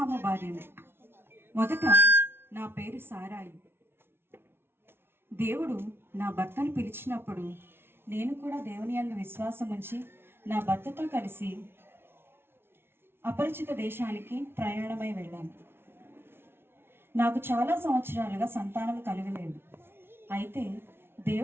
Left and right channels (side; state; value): left; late; 0.11 ms